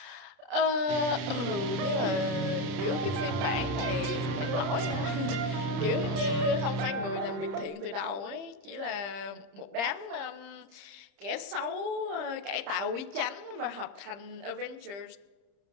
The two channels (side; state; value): left; late; 30 ms